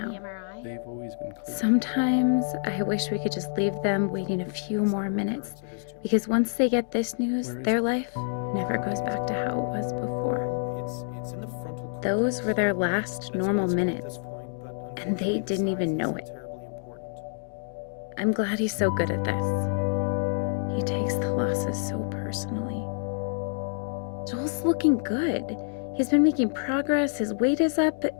MRI? They've always been clear. Sometimes I wish we could just leave them waiting a few more minutes, because once they get this news, their life never goes back to how it was before. Well, it's in the frontal cortex. Those were their last And it's normal quite small at minutes. this point, but they unfortunately, the didn't even size know isn't it. terribly important. I'm glad he's so good at this. He takes the losses so personally. Joel's looking good. He's been making progress, his weight is up.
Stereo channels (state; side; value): silent; right; digital silence